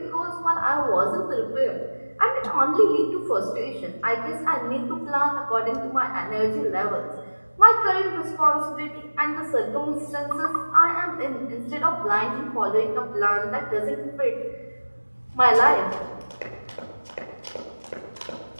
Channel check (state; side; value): inverted; both; correlation -1.00